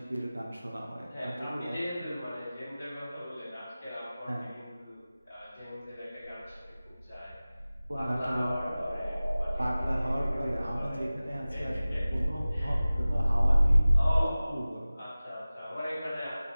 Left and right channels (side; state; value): both; inverted; correlation -0.97